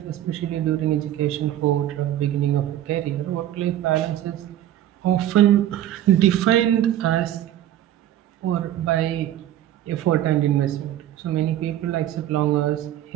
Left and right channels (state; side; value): quieter; left; 12.2 dB